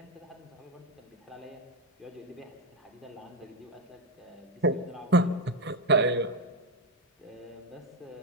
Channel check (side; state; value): both; normal; correlation 0.07